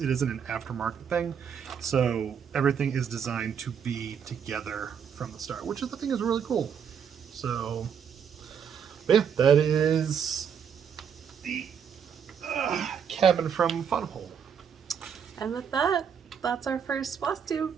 it isn't an aftermarket thing. So everything is designed to be together from the start, which I think is really cool. So, yeah, that is the cabin from Fun Hole. And with that, that's our first Flosstube.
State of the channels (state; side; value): quieter; left; 7.5 dB